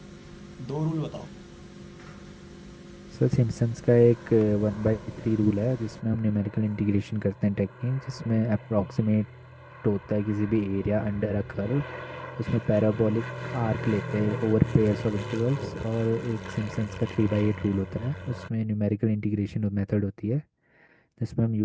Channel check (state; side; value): identical; both; correlation 1.00